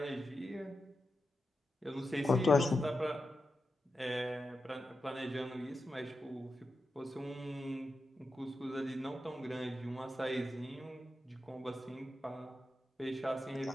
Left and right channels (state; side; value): normal; both; correlation 0.89